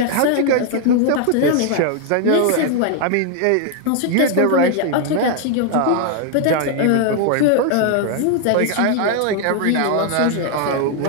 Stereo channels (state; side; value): different; both; correlation 0.00